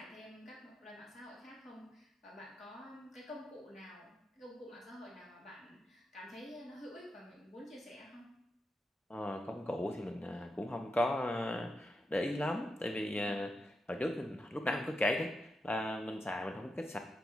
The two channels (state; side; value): normal; both; correlation 0.86